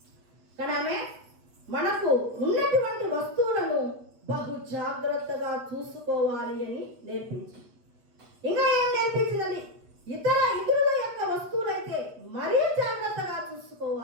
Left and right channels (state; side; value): late; left; 8.3 ms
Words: కానీ ఆమె మనకు ఉన్నటువంటి వస్తువులను బహు జాగ్రత్తగా చూసుకోవాలి అని నేర్పించింది. ఇంకా ఏం నేర్పించిందని? ఇతరుల యొక్క వస్తువులైతే మరీ జాగ్రత్తగా